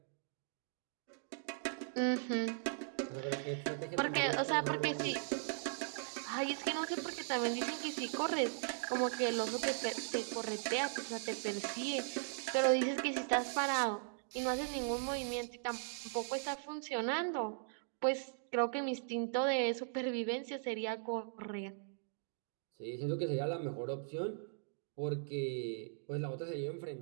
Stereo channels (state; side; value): silent; left; digital silence